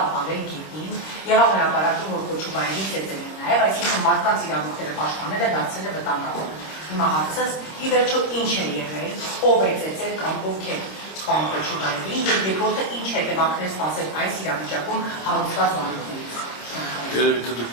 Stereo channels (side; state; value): right; late; 26 ms